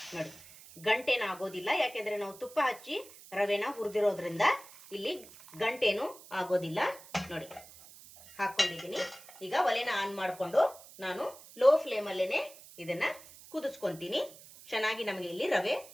ನೋಡಿ ಗಂಟೇನು ಆಗೋದಿಲ್ಲ, ಯಾಕೆಂದ್ರೆ ನಾವು ತುಪ್ಪ ಹಚ್ಚಿ ರವೆನ ಹುರಿದಿರೋದ್ರಿಂದ ಇಲ್ಲಿ ಗಂಟೇನು ಆಗೋದಿಲ್ಲ. ನೋಡಿ ಹಾಕೊಂಡಿದ್ದೀನಿ. ಈಗ ಒಲೆನ ಆನ್ ಮಾಡಿಕೊಂಡು ನಾನು ಲೋ ಫ್ಲೇಮಲ್ಲೇನೆ ಇದನ್ನ ಕುದಿಸ್ಕೊಂತೀನಿ. ಚೆನ್ನಾಗಿ ನಮಗೆ ಇಲ್ಲಿ ರವೆ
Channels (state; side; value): noise; right; hiss, 19 dB below the sound